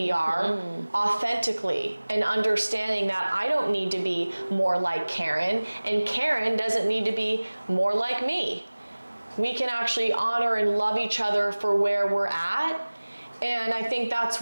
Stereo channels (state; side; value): inverted; both; correlation -1.00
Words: are authentically, and understanding that I don't need to be more like Karen, and Karen doesn't need to be more like me. We can actually honor and love each other for where we're at. And I think that's